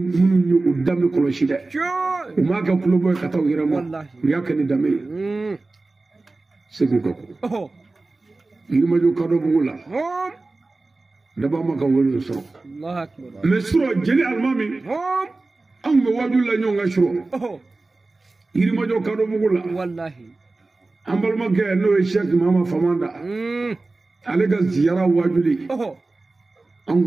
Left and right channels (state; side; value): quieter; left; 3.3 dB